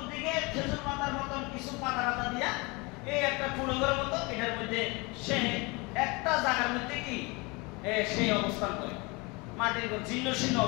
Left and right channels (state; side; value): quieter; right; 26.8 dB